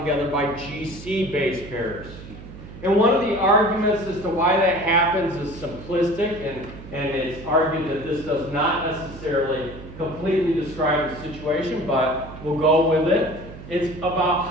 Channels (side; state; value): right; noise; hum, 14 dB below the sound